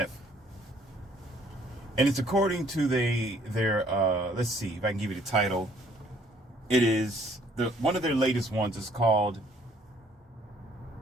And it's according to their let's see if I can give you the title. It is one of their latest ones is called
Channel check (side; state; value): both; normal; correlation 0.62